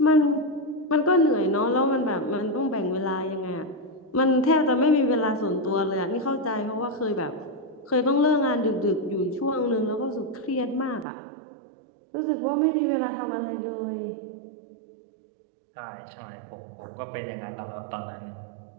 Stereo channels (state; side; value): drops out; left; at 11.1 s